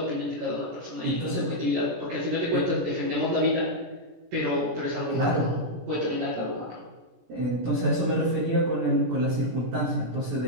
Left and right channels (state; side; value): late; left; 17 ms